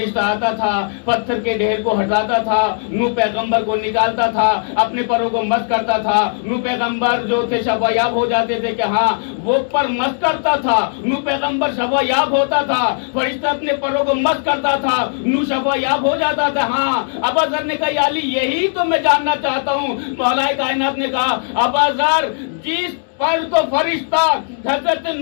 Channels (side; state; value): right; silent; digital silence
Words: آتا تھا، پتھر کے ڈھیر کو ہٹاتا تھا، نوح پیغمبر کو نکالتا تھا، اپنے پروں کو مس کرتا تھا۔ نوح پیغمبر جو تھے شفا یاب ہو جاتے تھے کہ ہاں وہ پر مس کرتا تھا، نوح پیغمبر شفا یاب ہوتا تھا، فرشتہ اپنے پروں کو مس کرتا تھا، نوح شفا یاب ہو جاتا تھا۔ ہاں ابا ذر نے کہا یا علی، یہی تو میں جاننا چاہتا ہوں۔ مولا کائنات نے کہا ابا ذر، جس پر تو فرشتہ حضرت